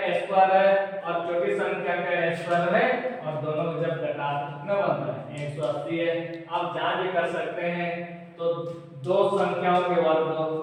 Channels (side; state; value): both; identical; correlation 1.00